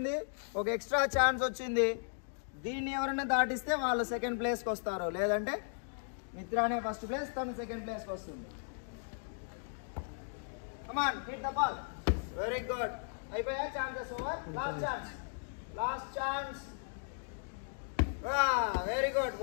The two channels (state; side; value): silent; right; digital silence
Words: ఒక extra chance వచ్చింది. దీన్ని ఎవరైనా దాటిస్తే వాళ్ళు second ప్లేస్కి వస్తారు, లేదంటే మిత్రానే ఫస్ట్ ప్లేస్, తను సెకండ్ ప్లేస్కి వస్తుంది. Come on hit the ball. Very good. అయిపోయా, chances over. Last chance, last chance. Very good.